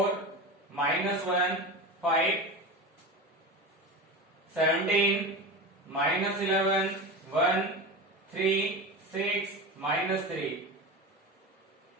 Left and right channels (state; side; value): normal; both; correlation 0.26